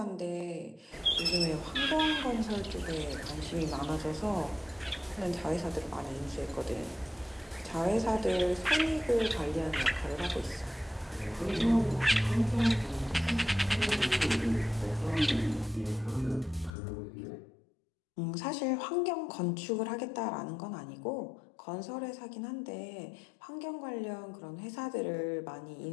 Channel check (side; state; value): right; drops out; at 16.7 s